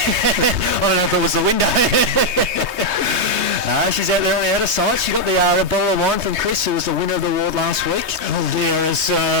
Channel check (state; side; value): late; left; 3.2 ms